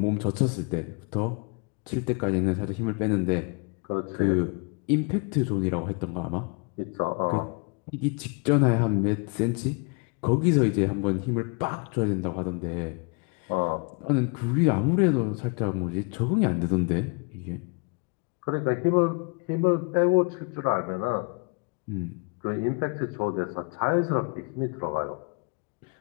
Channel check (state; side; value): quieter; right; 32.8 dB